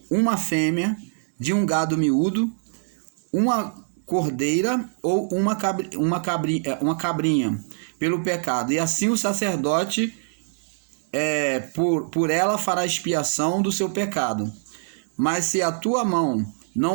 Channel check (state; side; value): silent; left; 63 dB below the other